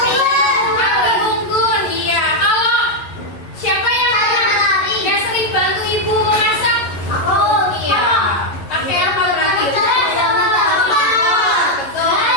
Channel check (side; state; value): right; late; 11 ms